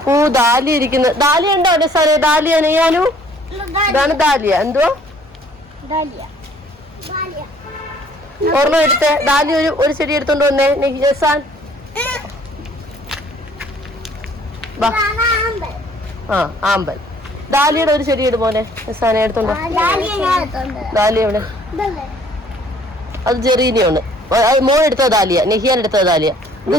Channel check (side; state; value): both; normal; correlation 0.58